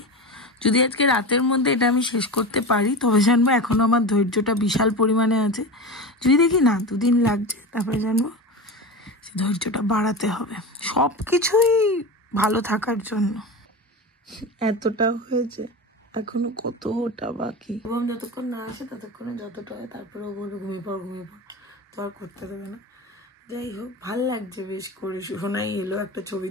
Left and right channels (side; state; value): both; normal; correlation 0.25